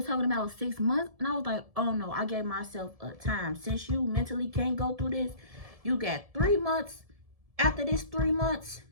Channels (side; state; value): left; late; 1.7 ms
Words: talking about 6 months, and I was like, oh no, I gave myself a time. Since you mentally can't go through this, you got 3 months. After this 3 months,